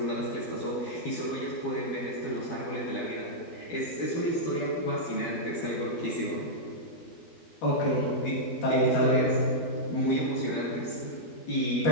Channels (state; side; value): late; right; 12 ms